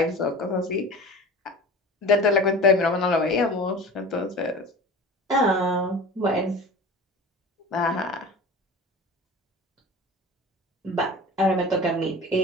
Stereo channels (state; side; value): normal; both; correlation 0.36